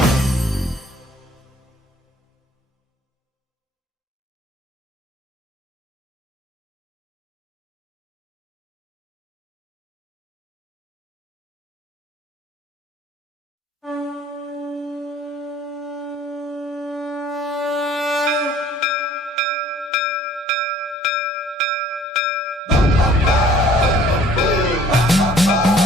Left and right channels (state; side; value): normal; both; correlation 0.54